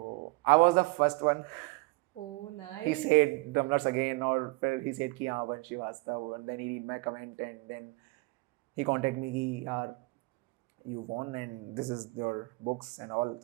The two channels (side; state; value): left; quieter; 24.9 dB